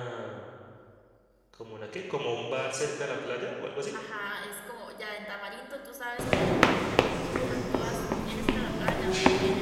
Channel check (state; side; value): identical; both; correlation 1.00